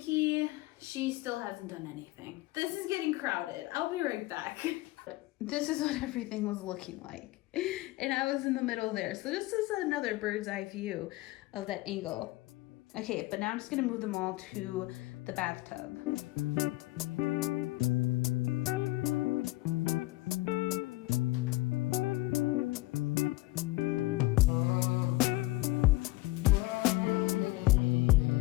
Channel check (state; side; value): quieter; right; 20.0 dB